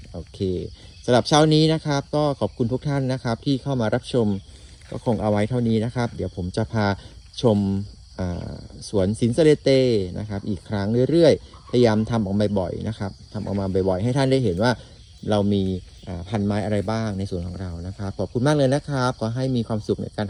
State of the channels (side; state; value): both; identical; correlation 1.00